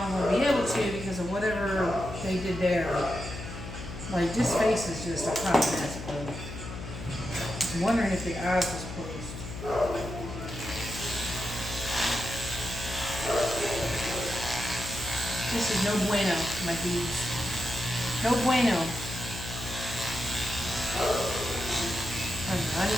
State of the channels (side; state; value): left; noise; hum, 9 dB below the sound